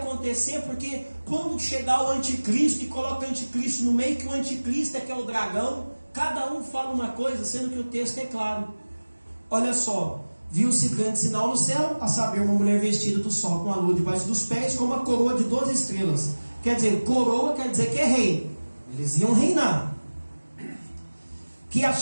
porque quando chegar o anticristo e coloca o anticristo no meio, que o anticristo é que é o dragão, cada um fala uma coisa, sendo que o texto é claro. Olha só, viu-se grande sinal no céu, a saber, uma mulher vestida do sol com a lua debaixo dos pés, com uma coroa de 12 estrelas. Quer dizer, coroa quer dizer que é rei. Eles iam reinar. Que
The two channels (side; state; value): both; inverted; correlation -1.00